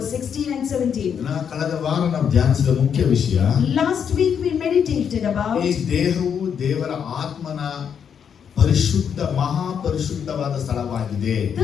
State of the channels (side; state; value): right; quieter; 7.7 dB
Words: 16 and 17. Last week we meditated about ಪರಿಶುದ್ಧ ಮಹಾಪರಿಶುದ್ಧವಾದ ಸ್ಥಳವಾಗಿದೆ.